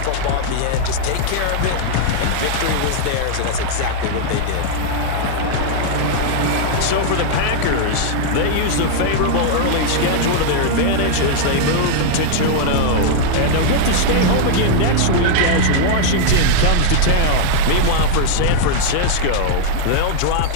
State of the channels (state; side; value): different; both; correlation -0.01